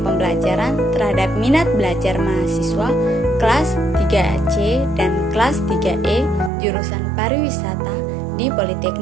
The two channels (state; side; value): drops out; left; at 6.5 s